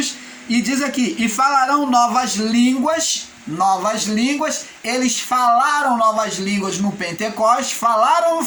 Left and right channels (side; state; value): both; identical; correlation 1.00